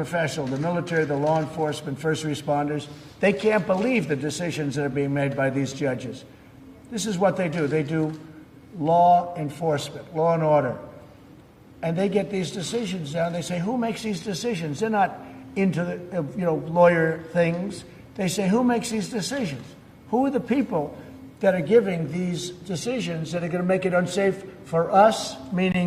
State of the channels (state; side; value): identical; both; correlation 1.00